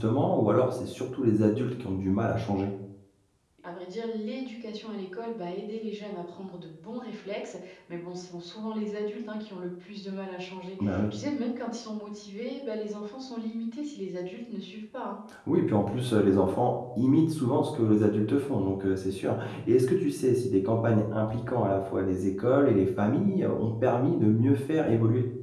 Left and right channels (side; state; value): both; identical; correlation 1.00